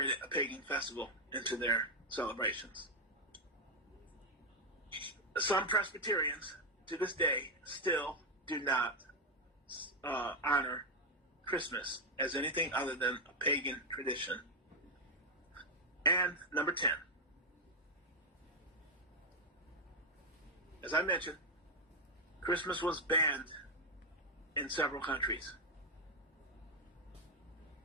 a pagan festival into their celebrations. Some Presbyterians, to this day, still do not honor Christmas as anything other than a pagan tradition. And number 10. As I mentioned, Christmas was banned in several countries.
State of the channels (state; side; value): normal; both; correlation 0.03